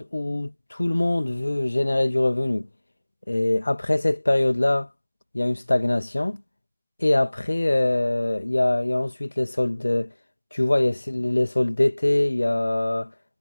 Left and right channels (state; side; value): inverted; both; correlation -1.00